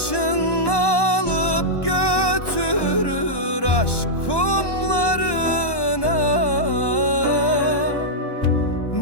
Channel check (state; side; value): late; right; 1.1 ms